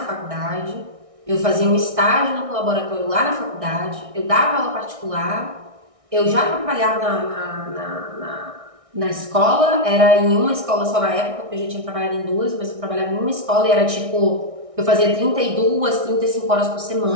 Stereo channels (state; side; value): late; left; 1.6 ms